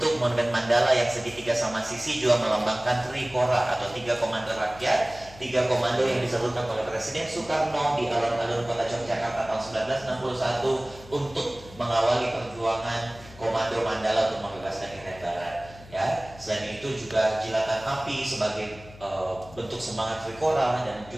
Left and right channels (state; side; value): noise; left; hum, 19 dB below the sound